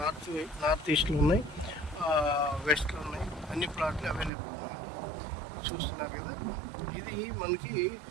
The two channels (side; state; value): left; drops out; at 4.3 s